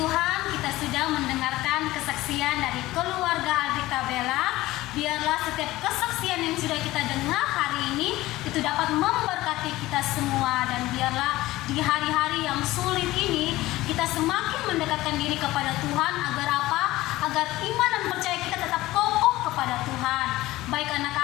kita sudah mendengarkan kesaksian dari keluarga Aldrik Tabelak. Biarlah setiap kesaksian yang sudah kita dengar hari ini itu dapat memberkati kita semua, dan biarlah di hari-hari yang sulit ini kita semakin mendekatkan diri kepada Tuhan. Agar apa? Agar iman dan percaya kita tetap kokoh kepada Tuhan. Baik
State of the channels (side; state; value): right; quieter; 17.5 dB